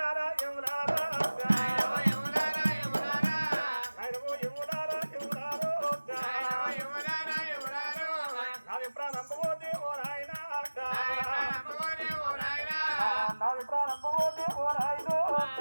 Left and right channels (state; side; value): inverted; both; correlation -1.00